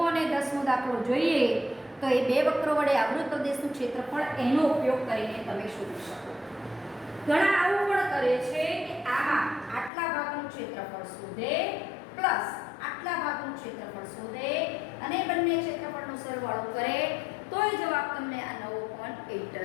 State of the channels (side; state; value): right; drops out; at 9.9 s